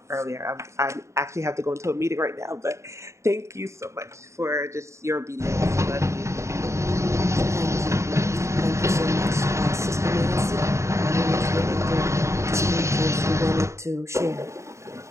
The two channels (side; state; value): left; late; 0.14 ms